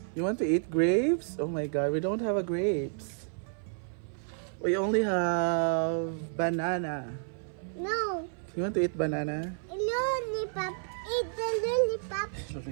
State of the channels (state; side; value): silent; left; 56 dB below the other